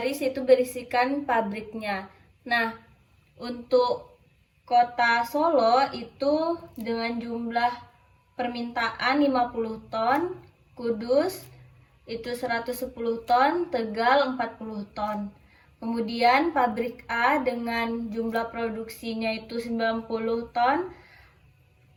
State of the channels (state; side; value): identical; both; correlation 1.00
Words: itu berisikan pabriknya. Nah, untuk kota Solo itu dengan jumlah permintaan 50 ton, Kudus itu 110 ton, Tegal 40 ton. Kemudian pabrik A dengan jumlah produksinya itu 90 ton,